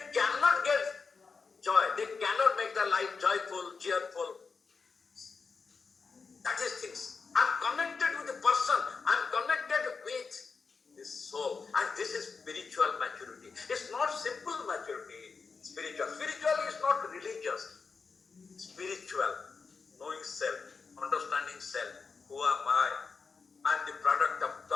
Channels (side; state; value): right; quieter; 4.9 dB